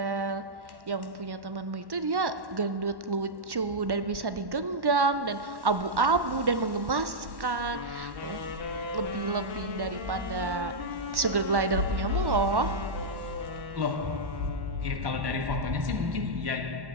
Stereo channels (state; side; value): late; left; 1.1 ms